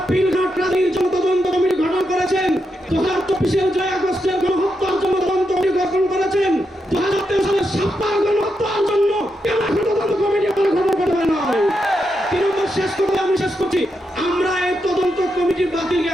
পিলঘাট রাজনীতির জন্য তদন্ত কমিটি গঠন করেছেন। 2024-এর জুলাই আগস্টের গণহত্যার জন্য তদন্ত কমিটি গঠন করেছেন। 2023 সালের সাপ্তাহ গণহত্যার জন্য কেন তদন্ত কমিটি আপনারা গঠন করতে পারেন না? 3 নম্বর, আমি শেষ করছি, আমরা এই তদন্ত কমিটির বাতিলকে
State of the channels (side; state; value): both; normal; correlation 0.84